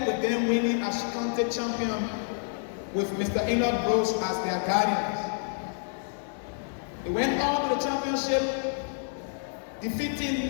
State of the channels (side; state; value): right; silent; digital silence